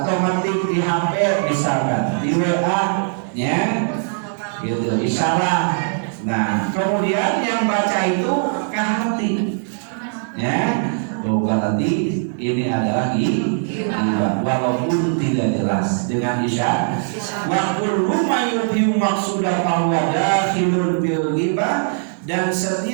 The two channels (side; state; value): left; silent; 65 dB below the other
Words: metik di HP misalkan di WA, ya, gitu isyarat. Nah, kemudian yang baca itu kahati, ya, berarti ini adalah hibah walaupun tidak jelas dengan isyarat. Wa kullu ma yufiu maqsuda fahuwa dakhilun bil hibah, dan